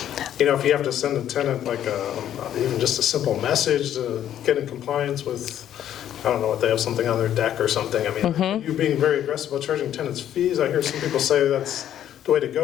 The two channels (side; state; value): right; quieter; 10.9 dB